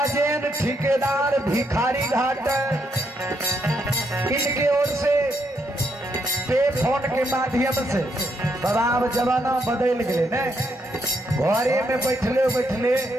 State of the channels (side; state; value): both; normal; correlation 0.77